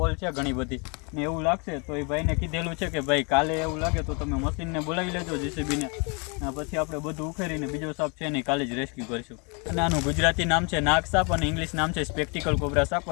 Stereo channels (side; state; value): right; quieter; 33.6 dB